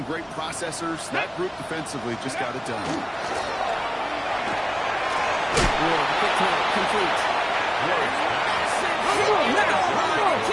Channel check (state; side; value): identical; both; correlation 1.00